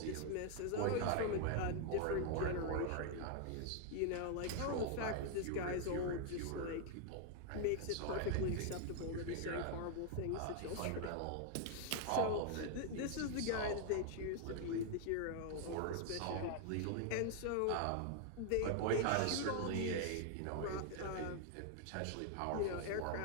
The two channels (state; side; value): different; both; correlation 0.00